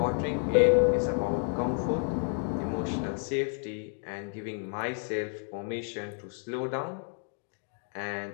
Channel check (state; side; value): silent; right; 57 dB below the other